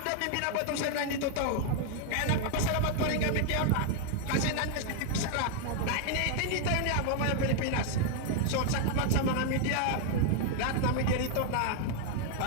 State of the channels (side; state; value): both; different; correlation 0.00